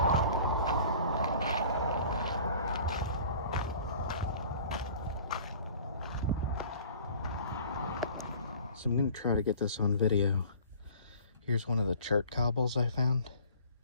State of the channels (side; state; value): both; inverted; correlation -0.48